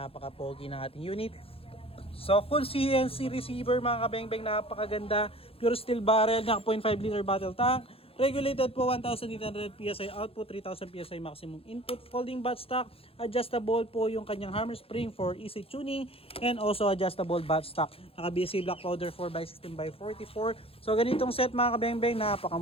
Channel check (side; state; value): right; late; 0.27 ms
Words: ng ating unit. So full CNC receiver mga kabeng-beng, napakaganda. Pure steel barrel, naka 0.5 liter battle tank. Regulated po 1,800 PSI output, 3,000 PSI maximum input, folding buttstock, adjustable po yung kanyang hammer spring for easy tuning, and also adjustable buttstock. Naka-BSA black powder 4x16x44. So ganitong set mga kabeng-beng,